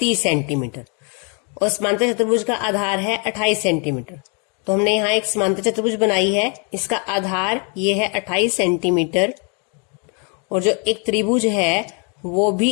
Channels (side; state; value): right; quieter; 36.6 dB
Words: सेंटीमीटर और समांतर चतुर्भुज का आधार है 28 सेंटीमीटर। तो हमने यहाँ एक समांतर चतुर्भुज बनाई है, इसका आधार ये है 28 सेंटीमीटर और जो एक त्रिभुज है वो भी